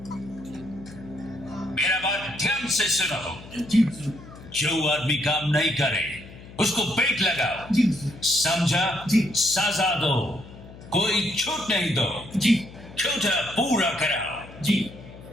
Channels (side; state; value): left; noise; hum, 17 dB below the sound